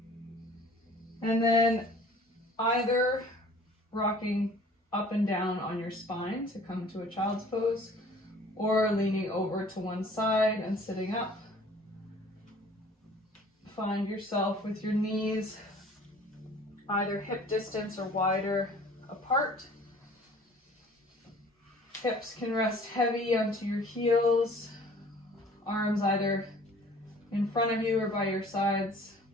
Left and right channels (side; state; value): both; normal; correlation 0.50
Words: And then either rocking up and down on your spine to come to a child's pose, or leaning over to one side and sitting up. Find yourself with your knees either hip distance or wider apart. Hips can rest heavy onto your heels, arms either in front of you or by your sides.